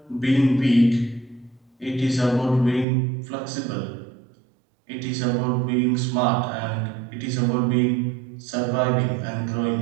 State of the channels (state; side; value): drops out; left; at 2.9 s